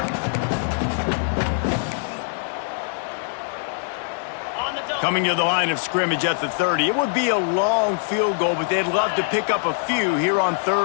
Coming to the line of scrimmage at the 30. It would be a long field goal, but they'd love to pick up a few here on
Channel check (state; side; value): silent; right; digital silence